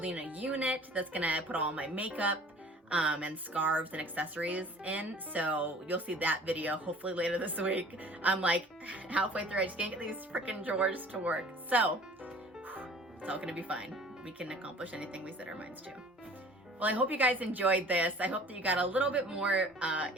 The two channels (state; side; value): normal; both; correlation 0.48